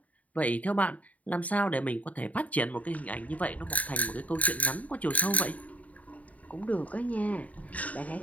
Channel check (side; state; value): right; late; 0.070 ms